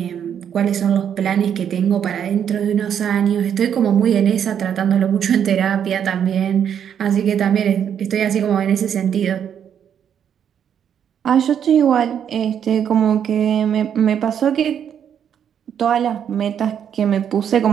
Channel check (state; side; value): quieter; left; 8.7 dB